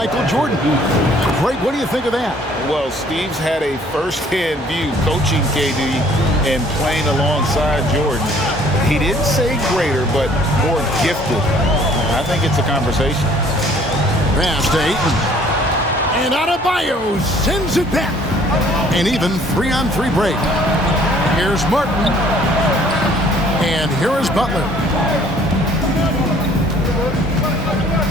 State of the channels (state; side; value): normal; both; correlation 0.57